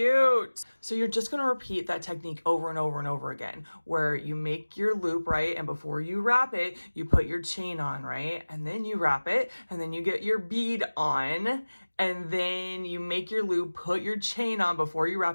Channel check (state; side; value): inverted; both; correlation -1.00